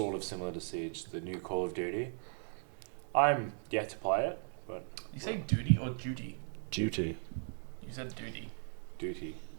of similar to Siege, the new Call of Duty. I'm yet to play it, but You say duty or duty? Duty. You said duty. Duty.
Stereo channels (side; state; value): left; silent; 53 dB below the other